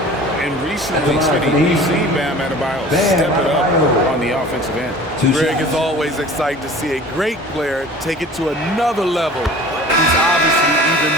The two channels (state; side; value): normal; both; correlation 0.43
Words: And recently, we've seen Bam Adebayo step it up on the offensive end. Greg is always excited to see a great player take it to another level. He's obviously even